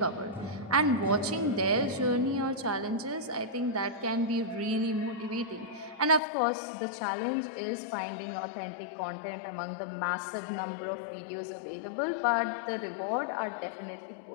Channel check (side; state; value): right; drops out; at 6.2 s